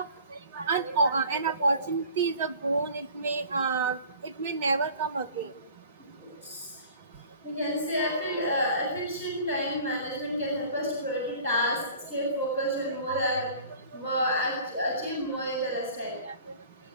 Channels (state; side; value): inverted; both; correlation -0.47